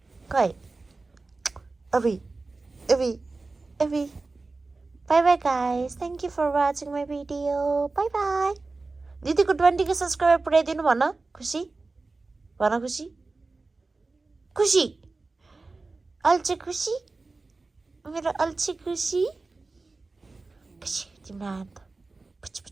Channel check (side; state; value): left; quieter; 3.6 dB